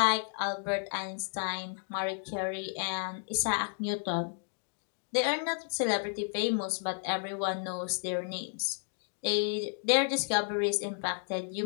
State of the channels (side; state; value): right; silent; 56 dB below the other